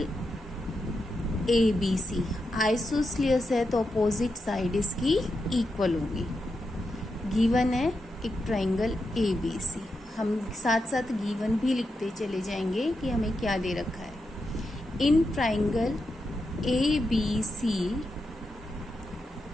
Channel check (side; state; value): both; normal; correlation 0.86